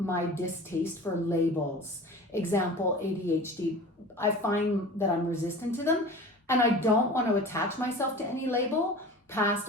distaste for labels. Example, ADHD. I find that I'm resistant to them and I don't want to attach myself to any label,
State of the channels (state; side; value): normal; both; correlation 0.38